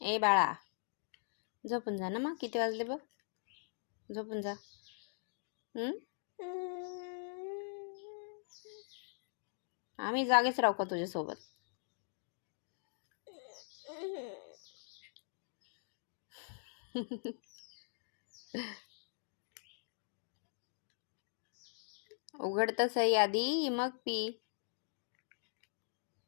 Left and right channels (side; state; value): right; silent; digital silence